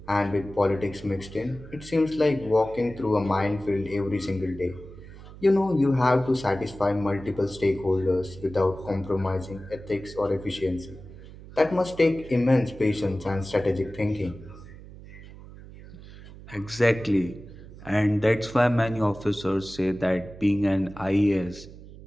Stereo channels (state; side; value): noise; right; hum, 17 dB below the sound